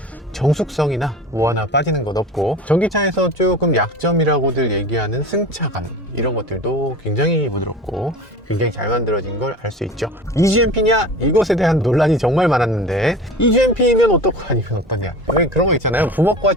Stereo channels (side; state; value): both; normal; correlation 0.36